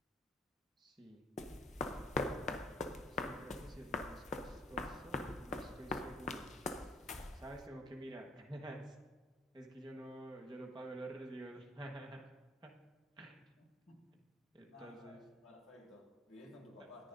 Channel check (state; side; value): normal; both; correlation 0.60